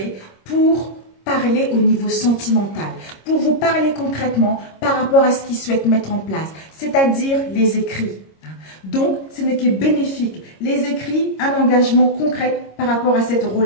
pour parler au niveau sentimental. Pour vous parler concrètement par rapport à ce qu'il souhaite mettre en place. C'est-à-dire les écrits. Donc, ce n'est que bénéfique. Les écrits, un engagement concret par rapport à cette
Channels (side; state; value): right; late; 26 ms